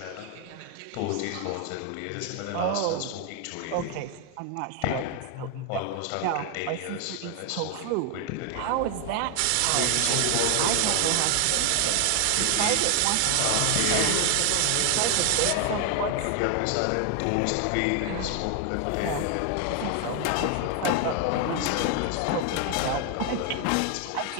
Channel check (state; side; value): different; both; correlation 0.01